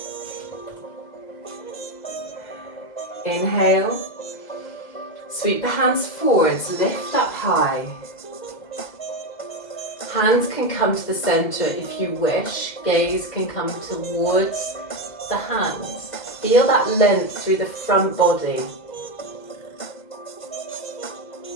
Inhale, sweep the hands forwards, lift up high. Hands can come to the center if you wish. Gaze can come towards the hands. Feel that length through the front body.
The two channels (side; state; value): right; late; 2.0 ms